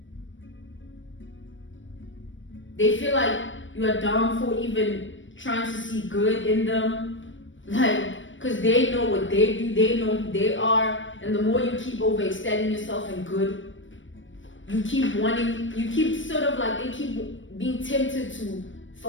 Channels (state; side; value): late; right; 0.56 ms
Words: They feel like you are dumb for even trying to see good in them. Like, because they know what they do, they know who they are. And the more you keep overextending yourself in good, you keep wanting, you keep sort of like, they keep being tempted to